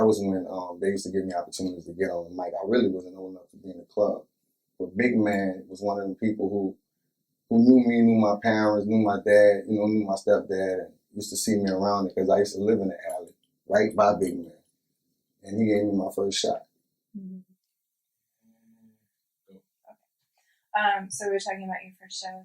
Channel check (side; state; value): both; identical; correlation 1.00